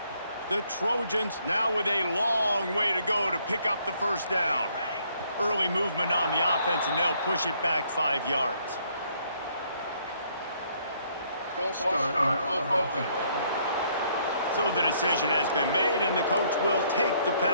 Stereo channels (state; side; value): inverted; both; correlation -0.67